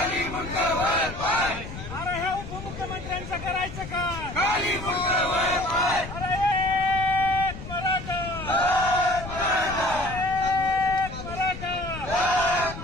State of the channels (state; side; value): noise; left; rumble, 11 dB below the sound